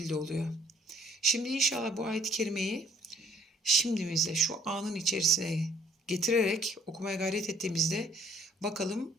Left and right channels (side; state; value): both; normal; correlation 0.60